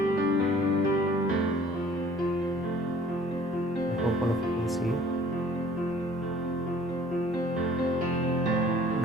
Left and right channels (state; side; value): normal; both; correlation 0.53